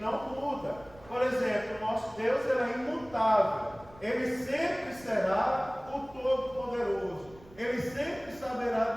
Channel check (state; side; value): noise; right; rumble, 23 dB below the sound